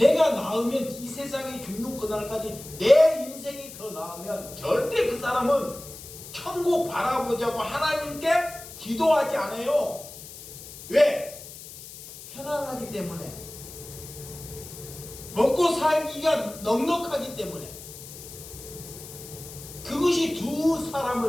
나으면 이 세상이 죽는 그날까지 내 인생이 더 나으면 절대 그 사람은 천국 바라보자고 하나님께 기도하지 않아요. 왜? 편안하기 때문에. 먹고 살기가 넉넉하기 때문에. 그것이 두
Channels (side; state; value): left; noise; hiss, 14 dB below the sound